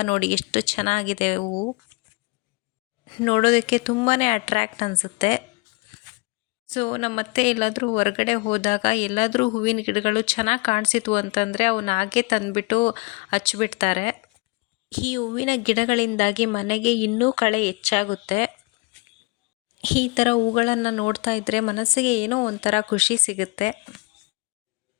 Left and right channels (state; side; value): quieter; right; 27.8 dB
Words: ನೋಡಿ ಎಷ್ಟು ಚೆನ್ನಾಗಿದೆ ಹೂವು, ನೋಡೋದಕ್ಕೆ ತುಂಬಾ ಅಟ್ರ್ಯಾಕ್ಟ್ ಅನಿಸುತ್ತೆ. ಸೊ ನಮ್ಮತ್ತೆ ಎಲ್ಲಾದರೂ ಹೊರಗಡೆ ಹೋದಾಗ ಎಲ್ಲಾದರೂ ಹೂವಿನ ಗಿಡಗಳು ಚೆನ್ನಾಗಿ ಕಾಣಿಸಿತು ಅಂತಂದರೆ ಅವನ್ನ ಹಾಗೆ ತಂದುಬಿಟ್ಟು ಹಚ್ಚಿಬಿಡ್ತಾರೆ. ಈ ಹೂವಿನ ಗಿಡಗಳಿಂದಾಗಿ ಮನೆಗೆ ಇನ್ನೂ ಕಳೆ ಹೆಚ್ಚಾಗುತ್ತೆ. ಈ ಥರ ಹೂಗಳನ್ನು ನೋಡ್ತಾ ಇದ್ದರೆ ಮನಸ್ಸಿಗೆ ಏನೋ ಒಂಥರ ಖುಷಿ ಸಿಗುತ್ತೆ.